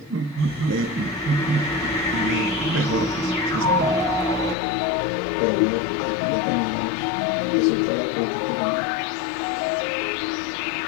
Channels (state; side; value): drops out; right; at 4.5 s